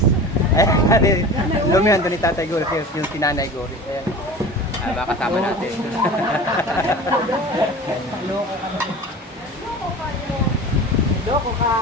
Lumihan doon ni Tatay Goris, yung si Nanay Goris. Ayan. Baka kasama natin. Loko ka na. Loko ka.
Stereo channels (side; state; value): both; normal; correlation 0.36